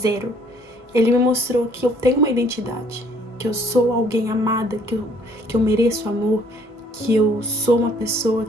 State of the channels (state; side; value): normal; both; correlation 0.61